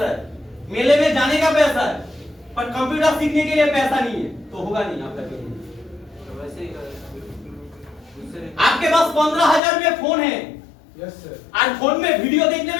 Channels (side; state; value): right; drops out; at 9.6 s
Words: है, मेले में जाने का पैसा है, पर कंप्यूटर सीखने के लिए पैसा नहीं है, तो होगा नहीं आपका करियर। आपके पास 15,000 में फोन है, यस सर। आज फोन में वीडियो देखने